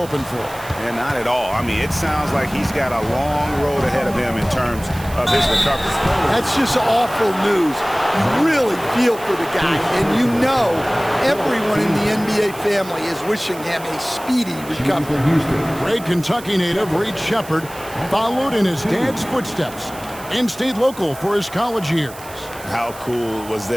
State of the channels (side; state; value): right; noise; hiss, 17 dB below the sound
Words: for. And not at all. I mean, it sounds like he's got a long road ahead of him in terms of his recovery. That's just awful news. You really feel for the guy, and you know everyone in the NBA family is wishing him a speedy recovery. Great Kentucky native Reed Sheppard followed in his dad's footsteps and stayed local for his college years. How cool was